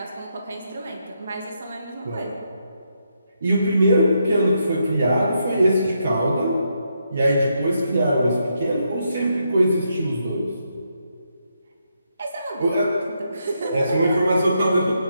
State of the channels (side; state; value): both; inverted; correlation -0.80